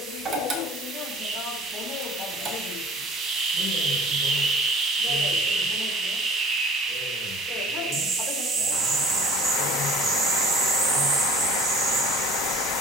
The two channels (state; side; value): normal; both; correlation 0.48